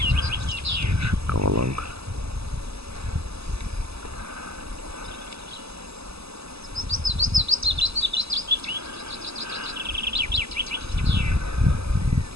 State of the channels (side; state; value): left; late; 0.78 ms